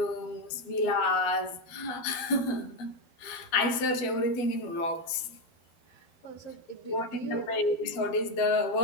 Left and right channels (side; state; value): right; late; 12 ms